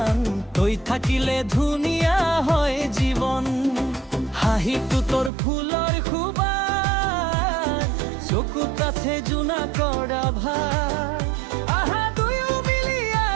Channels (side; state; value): left; drops out; at 5.3 s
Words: তই থাকিলে ধুনীয়া হয় জীৱন। হাঁহিটো তোৰ ফুলৰ সুবাস, চকুত আছে জোনা কৰা ভাৰ। আহা দুয়ো মিলি